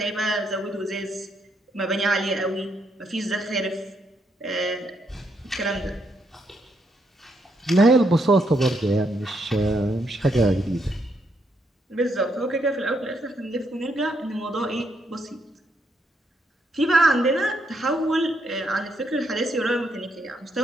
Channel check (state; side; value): normal; both; correlation 0.76